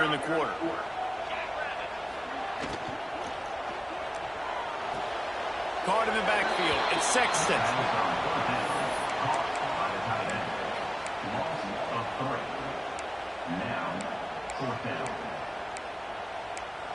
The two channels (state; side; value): identical; both; correlation 1.00